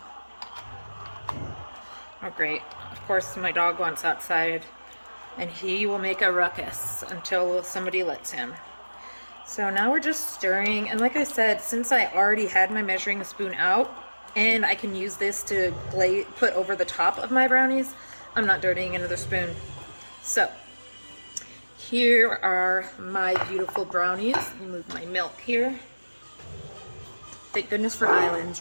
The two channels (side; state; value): both; inverted; correlation -1.00